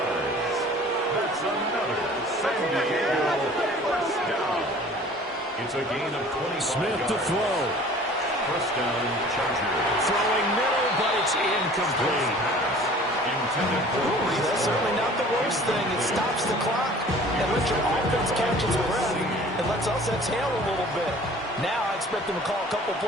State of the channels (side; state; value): both; normal; correlation 0.48